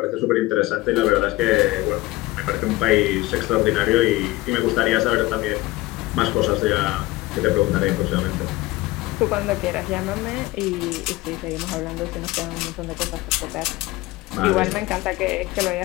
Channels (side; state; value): right; quieter; 19.3 dB